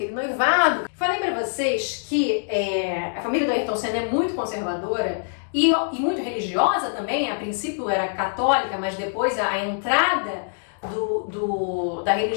noivado. Falei para vocês que a família do Ayrton Senna é muito conservadora e muito religiosa também. A princípio era católica, mas depois a entrada da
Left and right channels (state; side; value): silent; right; digital silence